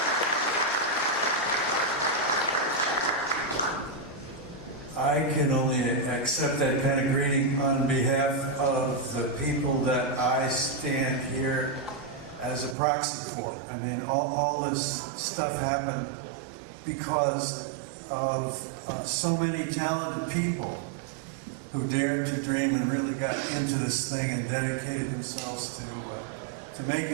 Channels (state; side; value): drops out; left; at 12.8 s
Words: I can only accept that kind of greeting on behalf of the people that I stand here as a proxy for. I mean, all this stuff happened because of so many talented people who dared to dream and really got into this thing and dedicated themselves to